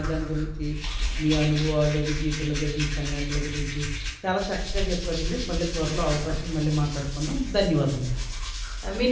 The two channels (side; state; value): both; identical; correlation 1.00